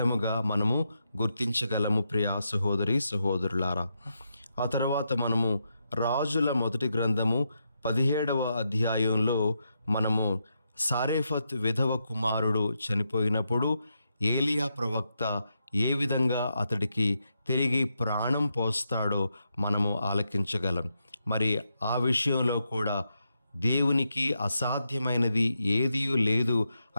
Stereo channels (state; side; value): inverted; both; correlation -0.83